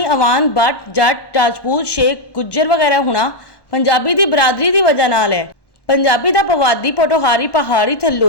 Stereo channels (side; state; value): right; late; 1.1 ms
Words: ਅਵਾਨ, ਬੱਟ, ਜੱਟ, ਰਾਜਪੂਤ, ਸ਼ੇਖ, ਗੁੱਜਰ ਵਗੈਰਾ ਹੋਣਾ ਪੰਜਾਬੀ ਦੀ ਬਰਾਦਰੀ ਦੀ ਵਜ੍ਹਾ ਨਾਲ ਹੈ। ਪੰਜਾਬੀ ਦਾ ਪਵਾਦੀ, ਪੋਠੋਹਾਰੀ, ਪਹਾੜੀ,